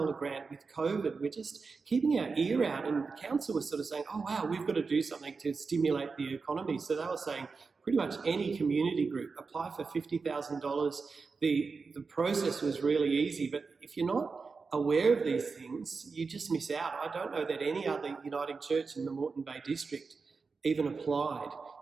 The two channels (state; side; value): quieter; left; 4.6 dB